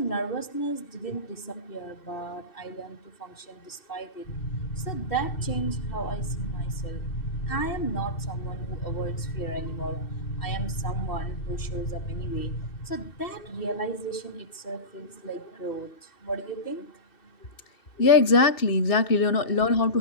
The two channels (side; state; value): right; late; 2.6 ms